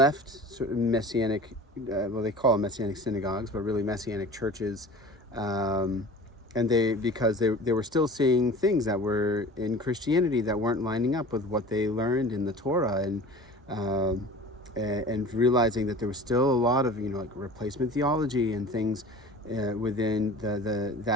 sort of messianic, well, they call them messianic synagogues, but really messianic churches, and because they were still seeing things that were in Christianity that weren't lining up with what they learned in the Torah, and realizing that there was still a lot of like replacement theology and things within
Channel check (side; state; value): both; normal; correlation 0.40